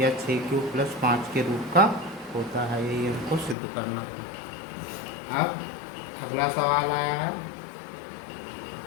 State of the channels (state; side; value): drops out; right; at 3.6 s